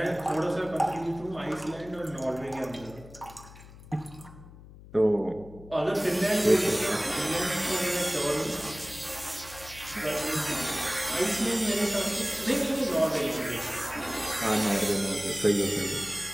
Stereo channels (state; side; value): noise; left; hum, 18 dB below the sound